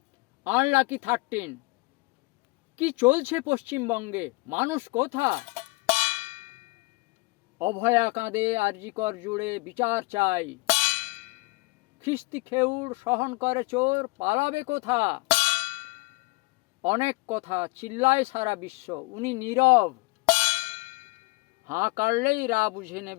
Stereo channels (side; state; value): right; quieter; 26.2 dB